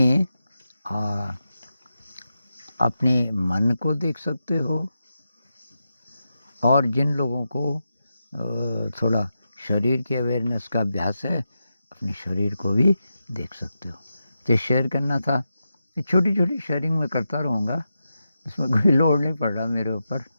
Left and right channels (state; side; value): inverted; both; correlation -0.88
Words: अपने मन को देख सकते हो, और जिन लोगों को थोड़ा शरीर के अवेयरनेस का अभ्यास है अपने शरीर को भी देख सकते हो। तो शेयर करना था, छोटी छोटी शेयरिंग मैं करता रहूँगा, इसमें कोई लोड नहीं पड़ रहा मेरे ऊपर।